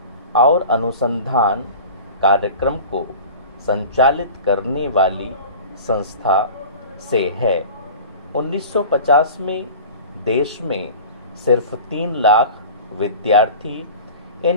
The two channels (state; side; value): inverted; both; correlation -0.38